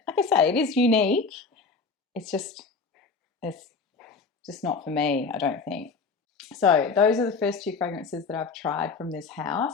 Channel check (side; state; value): right; quieter; 4.7 dB